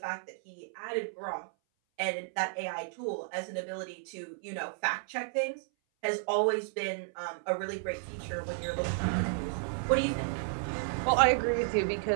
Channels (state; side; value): silent; left; 56 dB below the other